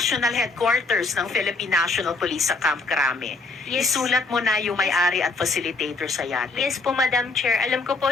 headquarters ng Philippine National Police sa Camp Crame. Yes. Isulat mo na yung may-ari at facilitator sa yate. Yes po, Madam Chair. Alam ko po,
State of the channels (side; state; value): right; quieter; 3.7 dB